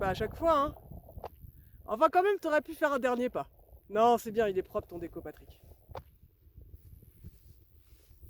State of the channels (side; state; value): both; identical; correlation 1.00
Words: à chaque fois, hein. Enfin, quand même, t'aurais pu faire un dernier pas. Non, c'est bien, il est propre ton déco, Patrick.